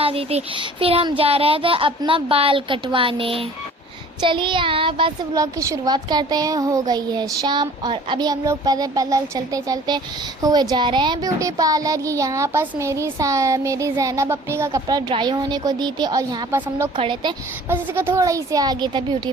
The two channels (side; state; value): both; normal; correlation 0.48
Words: दी थी। फिर हम जा रहे थे अपना बाल कटवाने। चलिए यहाँ बस व्लॉग की शुरुआत करते हैं। हो गई है शाम और अभी हम लोग पैदल पैदल चलते चलते हुए जा रहे हैं ब्यूटी पार्लर। ये यहाँ पास मेरी जैनब अपनी का कपड़ा ड्राई होने को दी थी और यहाँ पास हम लोग खड़े थे, बस इसका थोड़ा ही से आगे था ब्यूटी